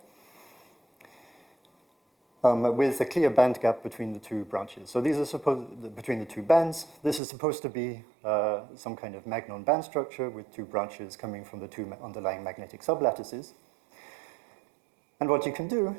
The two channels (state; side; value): drops out; left; at 7.2 s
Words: with a clear band gap between the 2 branches. So these are between the 2 bands. This is supposed to be some kind of magnon band structure with 2 branches coming from the 2 underlying magnetic sublattices. And what you can do